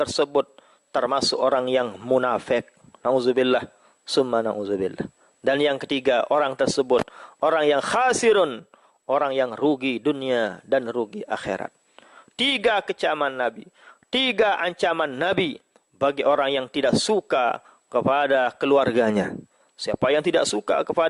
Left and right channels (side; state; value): both; identical; correlation 1.00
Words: termasuk orang yang munafik. Nauzubillah, summa nauzubillah. Dan yang ketiga, orang tersebut orang yang khasirun, orang yang rugi dunia dan rugi akhirat. 3 kecaman Nabi, 3 ancaman Nabi bagi orang yang tidak suka kepada keluarganya. Siapa yang tidak suka